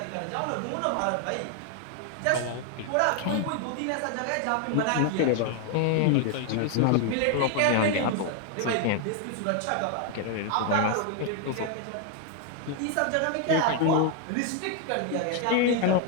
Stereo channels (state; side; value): different; both; correlation 0.00